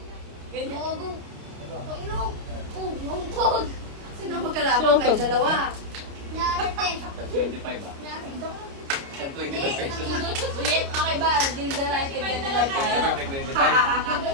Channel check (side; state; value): left; late; 29 ms